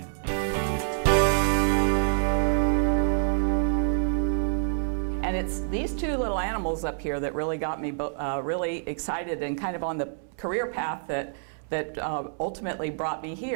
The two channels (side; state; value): left; silent; 60 dB below the other